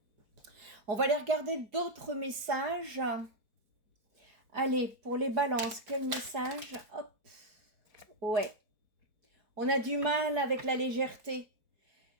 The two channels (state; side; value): late; left; 4.7 ms